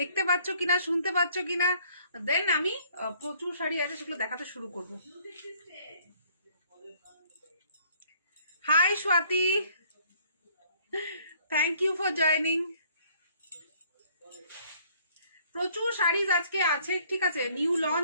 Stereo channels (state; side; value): inverted; both; correlation -0.61